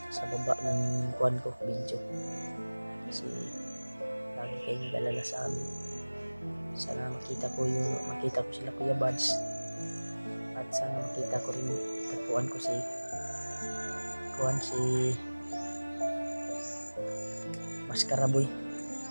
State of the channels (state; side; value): inverted; both; correlation -1.00